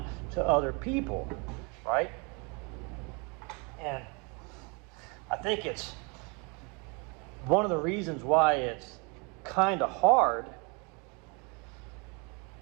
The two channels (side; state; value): left; quieter; 31.8 dB